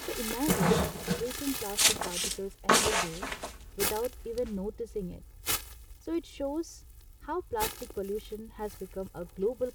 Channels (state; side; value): identical; both; correlation 1.00